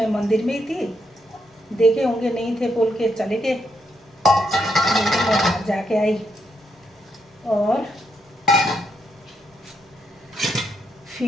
मंदिर में ही थी, देखे होंगे नहीं थे बोल के चले गए। मैं बाहर जाके आई और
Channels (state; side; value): normal; both; correlation 0.79